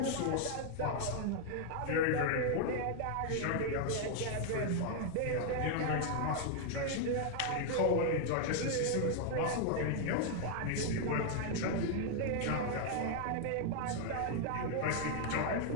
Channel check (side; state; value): both; different; correlation 0.00